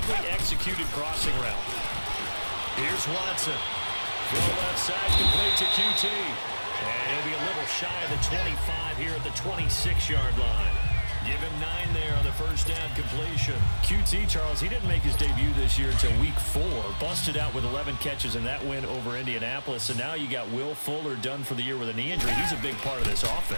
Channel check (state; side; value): inverted; both; correlation -1.00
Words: executed crossing route. Here's Watson. Throw left side, complete to QT. And he'll be a little shy of the 25 here at the 26-yard line. Give him 9 there on the first down completion. QT, Charles, he didn't make his debut this year until week 4. Busted out with 11 catches in that win over Indianapolis. And now you got Will Fuller done for the year with a knee injury. He's a big part of this